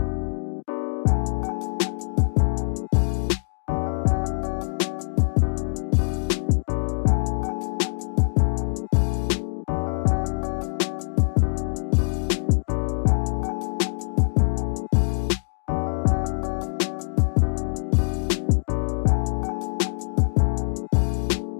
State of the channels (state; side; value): silent; right; digital silence